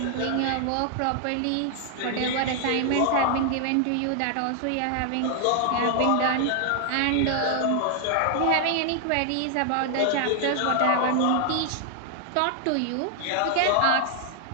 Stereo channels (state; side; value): different; both; correlation 0.00